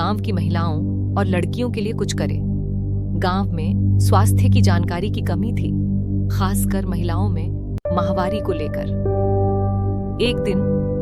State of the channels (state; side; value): identical; both; correlation 1.00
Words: की महिलाओं और लड़कियों के लिए कुछ करे। गांव में स्वास्थ्य की जानकारी की कमी थी, खासकर महिलाओं में माहवारी को लेकर। एक